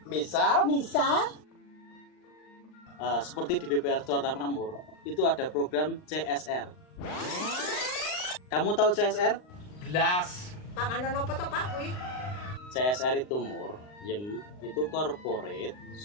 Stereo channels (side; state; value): right; late; 39 ms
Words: Misal Seperti di BPR Jakarta Makmur, itu ada program CSR. Kamu tahu CSR? blas. Panganan apa to Pak kuwi? CSR itu itu Corporate